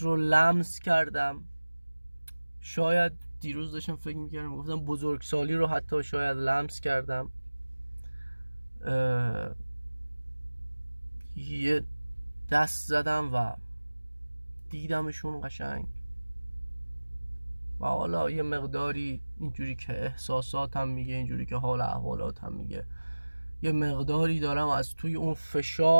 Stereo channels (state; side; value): inverted; both; correlation -1.00